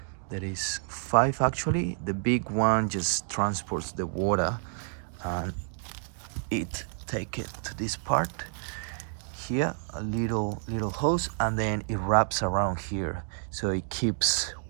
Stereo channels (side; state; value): left; silent; digital silence